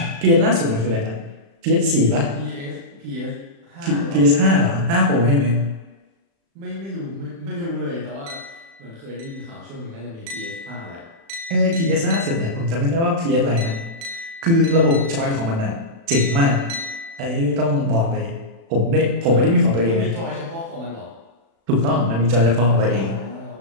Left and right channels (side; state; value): left; late; 36 ms